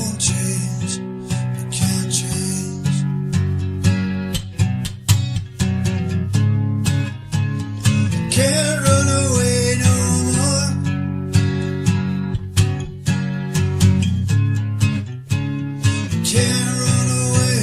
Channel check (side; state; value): both; identical; correlation 1.00